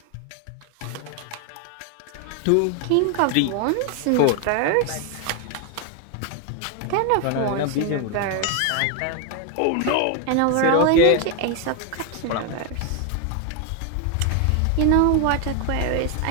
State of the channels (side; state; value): both; different; correlation 0.01